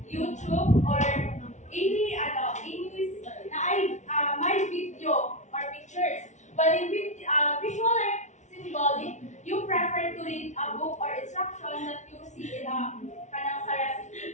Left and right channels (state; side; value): late; right; 0.34 ms